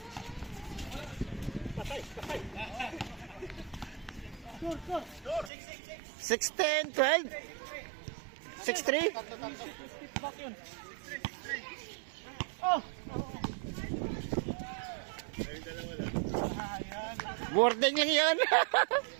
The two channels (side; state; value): left; drops out; at 5.5 s